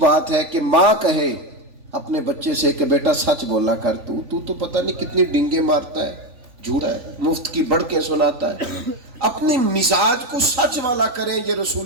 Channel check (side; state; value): left; late; 3.4 ms